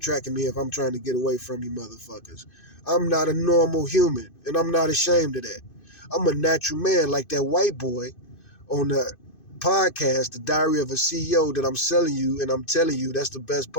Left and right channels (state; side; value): late; right; 2.5 ms